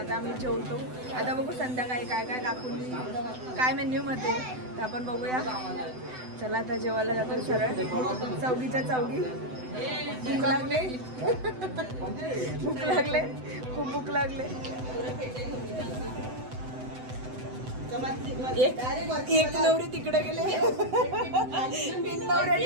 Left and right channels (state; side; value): late; left; 7.9 ms